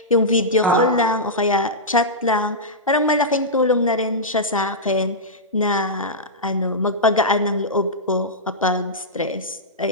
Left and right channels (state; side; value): normal; both; correlation -0.12